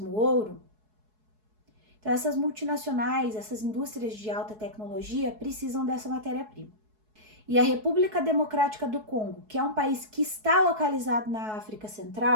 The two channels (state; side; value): late; left; 4.7 ms